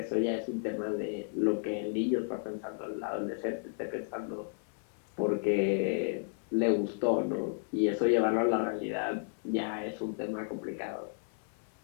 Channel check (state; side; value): silent; right; 56 dB below the other